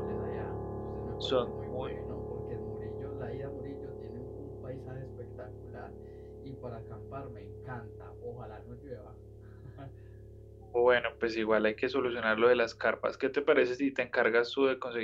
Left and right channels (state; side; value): identical; both; correlation 1.00